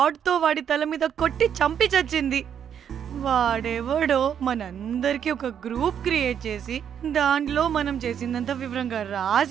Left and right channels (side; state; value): left; quieter; 8.6 dB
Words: వాడి తల మీద కొట్టి చంపి చచ్చింది. వాడెవడో మనందరికీ ఒక గ్రూప్ క్రియేట్ చేసి దాంట్లో మనం చేసిందంతా వివరంగా